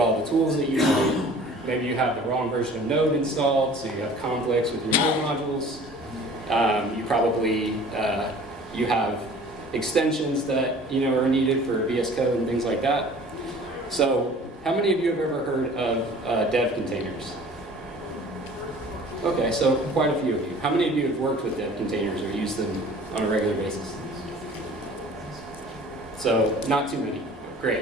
the tools that you need. Maybe you have the wrong version of Node installed, so you have conflicts with your Node modules. You probably, you have extensions that are needed for VS Code and things like that. So how many of you have ever heard of dev containers? Okay, so quite a few of you. How many of you have worked with dev containers or used them on a regular basis? So not too many.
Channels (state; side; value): normal; both; correlation 0.47